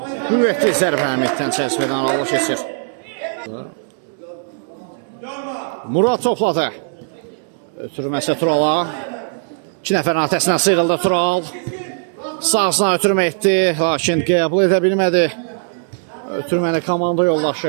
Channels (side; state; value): left; silent; digital silence